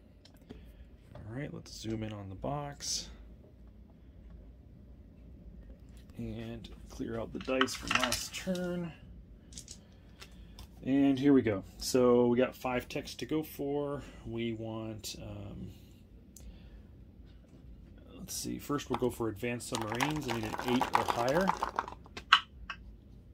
All right, let's zoom in on the box and clear out the dice from last turn. And here we go. So we got 5 techs to go for. We want, let's see, first we'll go for advanced submarines. I need an 8 or higher.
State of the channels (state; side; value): identical; both; correlation 1.00